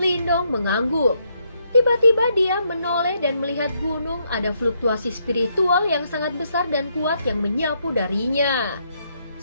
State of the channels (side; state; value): both; inverted; correlation -0.75